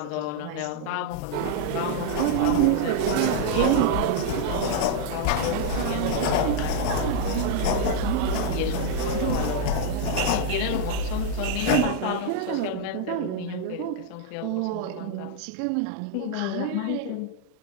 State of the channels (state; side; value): different; both; correlation -0.01